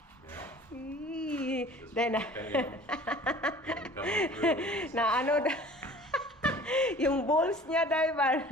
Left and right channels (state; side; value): normal; both; correlation 0.46